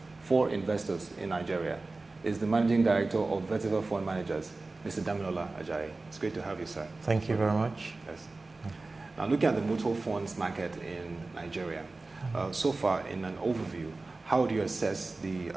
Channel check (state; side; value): quieter; left; 3.4 dB